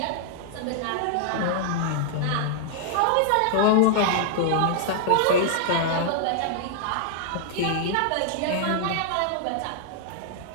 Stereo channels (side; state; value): both; different; correlation -0.01